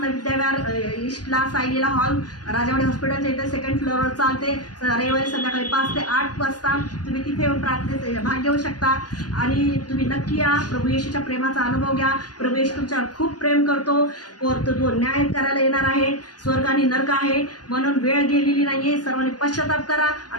विद्याविहार ईस्टला सायलीला हॉल राजावाडी हॉस्पिटलच्या इथे 2nd फ्लोअरवर चालते. रविवारी संध्याकाळी 5 ते 8 वाजता तुम्ही तिथे येऊन प्रार्थनेत भाग घेऊ शकता. आणि तुम्ही नक्की या. प्रभू येशूच्या प्रेमाचा अनुभव घ्या. प्रभू येशू तुमच्यावर खूप प्रेम करतो. तो न्याय करायला येणार आहे. स्वर्ग आणि नरक आहे म्हणून वेळ गेलेली नाहीये. सर्वांनी पश्चाताप करा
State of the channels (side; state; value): right; late; 0.69 ms